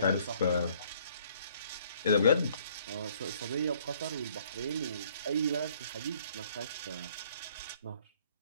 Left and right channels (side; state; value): both; inverted; correlation -0.62